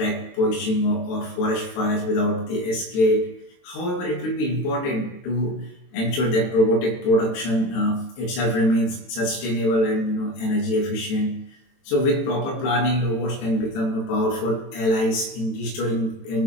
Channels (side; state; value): right; late; 22 ms